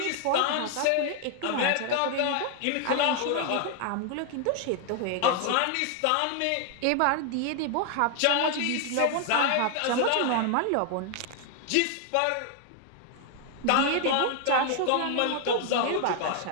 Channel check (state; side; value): different; both; correlation 0.00